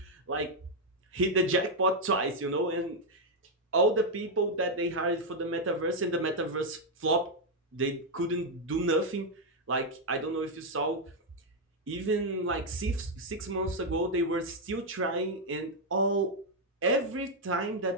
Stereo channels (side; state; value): both; normal; correlation 0.00